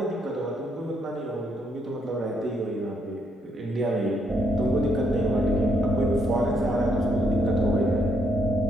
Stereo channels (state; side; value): normal; both; correlation 0.74